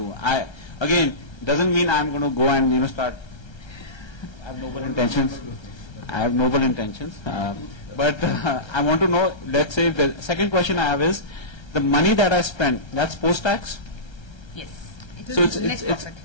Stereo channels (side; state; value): right; late; 1.3 ms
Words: Again, doesn't mean I'm going to go and, start, I have noble intentions. But I want to know, let's say, the second question I have is, the money that I spend, that's post-tax? Yes. It is So net